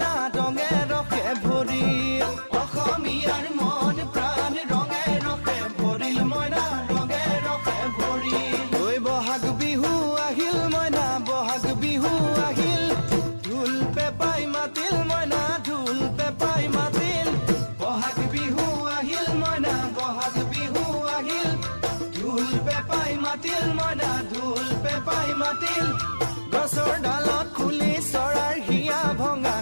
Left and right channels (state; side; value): inverted; both; correlation -1.00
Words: ৰঙে ৰসে ভৰিল অসমীয়াৰ মন প্ৰাণ ৰঙে ৰসে ভৰিল মইনা ৰঙে ৰসে ভৰিল ঐ বহাগ বিহু আহিল মইনা বহাগ বিহু আহিল ঢোল পেপাই মাতিল মইনা ঢোল পেপাই মাতিল বহাগ বিহু আহিল মইনা বহাগ বিহু আহিল ঢোল পেপাই মাতিল মইনা ঢোল পেপাই মাতিল গছৰ ডালত খুলি চৰাইৰ হিয়া ভঙা